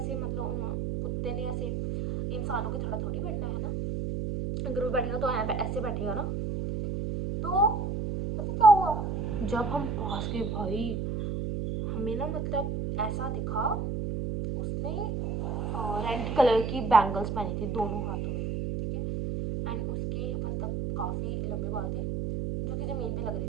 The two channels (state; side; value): noise; right; hum, 2 dB below the sound